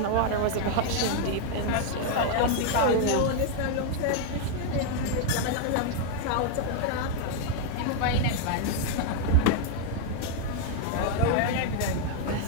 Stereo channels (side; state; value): both; different; correlation 0.00